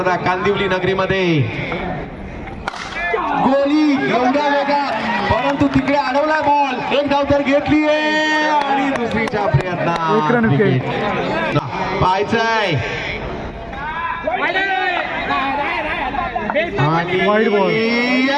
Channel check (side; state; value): both; identical; correlation 1.00